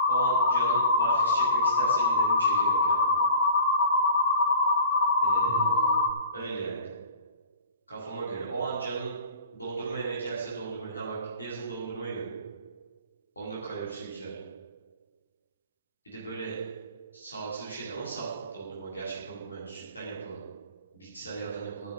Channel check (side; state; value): both; inverted; correlation -0.43